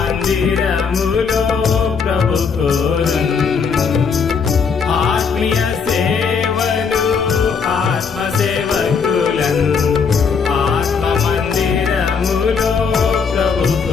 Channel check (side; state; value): right; quieter; 5.8 dB